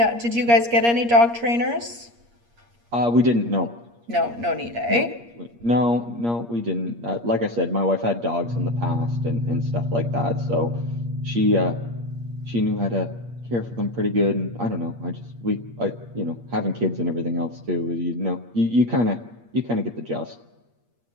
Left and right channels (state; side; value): late; left; 8.5 ms